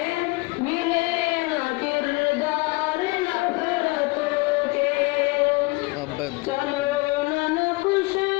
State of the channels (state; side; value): quieter; right; 24.6 dB